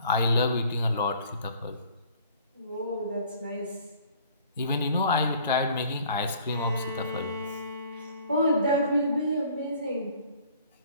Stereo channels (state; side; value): inverted; both; correlation -0.54